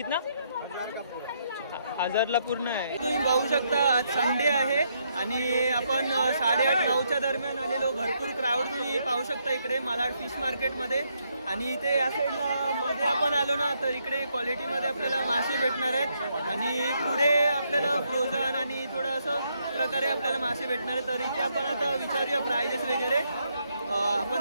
1000ला पूर्ण आहे. तुम्ही बघू शकता आज संडे आहे आणि आपण 8:30-9च्या दरम्यान आलेलो. भरपूर क्राऊड तुम्ही पाहू शकता इकडे मालाड फिश मार्केटमध्ये. आणि इथे या साईडला मध्ये आपण आलो ना तर इकडे क्वालिटीमध्ये आपल्याला मासे भेटणार आहेत. आणि पुढे आपल्याला फ्रोझन आणि थोडं असं प्रकारे आपल्याला मासे भेटणार आहेत. तर इथे आपण आता विचारूया प्राइजेस वगैरे.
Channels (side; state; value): both; inverted; correlation -0.76